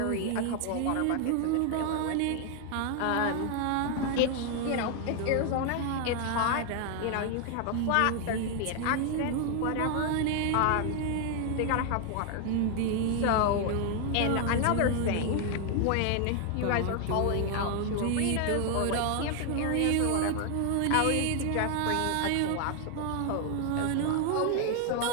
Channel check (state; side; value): different; both; correlation 0.01